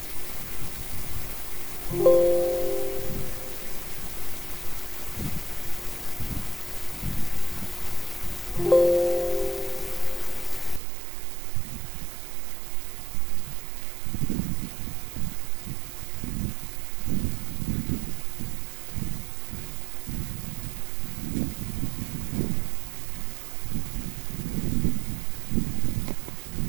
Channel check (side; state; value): left; drops out; at 10.8 s